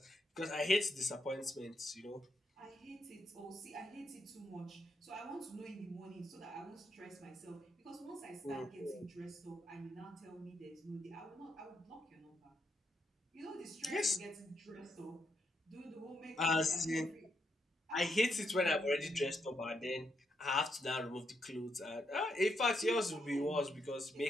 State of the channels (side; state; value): both; normal; correlation 0.80